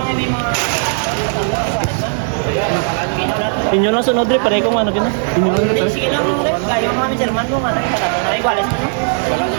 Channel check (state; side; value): silent; left; 56 dB below the other